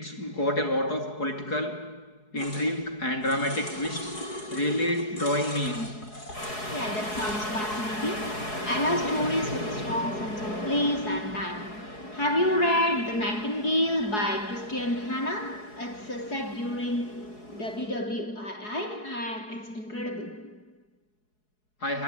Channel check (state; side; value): late; right; 4.7 ms